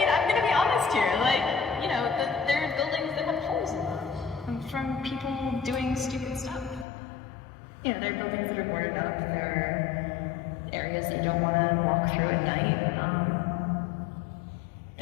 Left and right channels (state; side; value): drops out; right; at 6.9 s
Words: I'm gonna be honest here. Like, you know, there are buildings that have holes in them from people doing stupid stuff. You know, there are buildings that are boarded up. There are areas that you don't want to walk through at night.